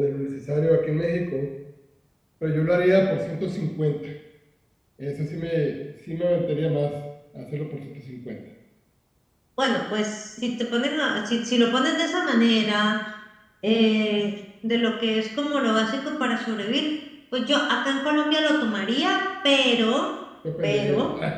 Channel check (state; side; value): identical; both; correlation 1.00